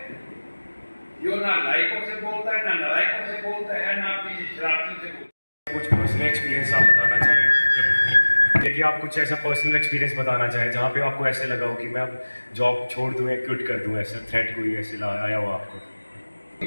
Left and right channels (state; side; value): inverted; both; correlation -1.00